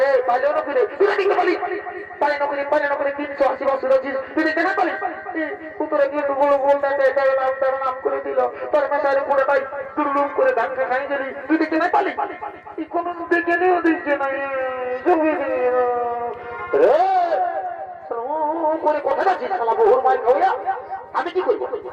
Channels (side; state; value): both; identical; correlation 1.00